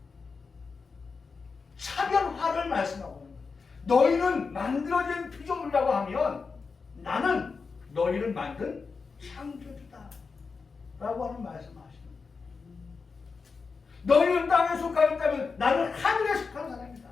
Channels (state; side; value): quieter; right; 4.8 dB